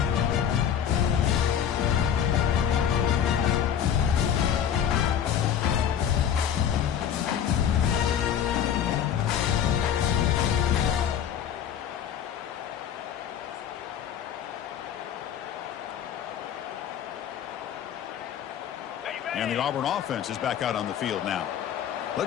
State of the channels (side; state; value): right; quieter; 9.0 dB